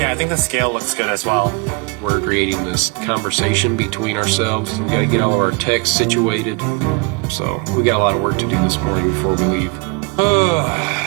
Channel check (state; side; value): quieter; left; 28.8 dB